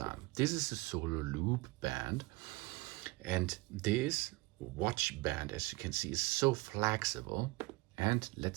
This is a solo loop band, and this watch band, as you can see, is so flexible. And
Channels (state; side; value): quieter; left; 22.7 dB